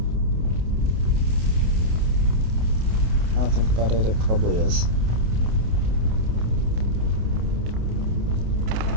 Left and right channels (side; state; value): left; late; 28 ms